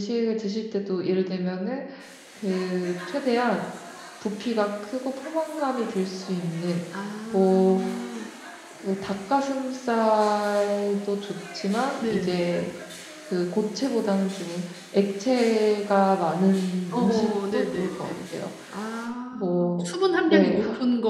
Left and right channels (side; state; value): both; identical; correlation 1.00